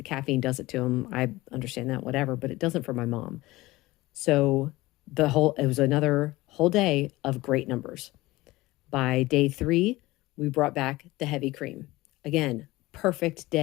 caffeine does it to them. I understand that, whatever, but it doesn't for my mom. So it was another whole day of great numbers. By day 3, we brought back the heavy cream. Again, perfect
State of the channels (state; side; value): quieter; right; 19.4 dB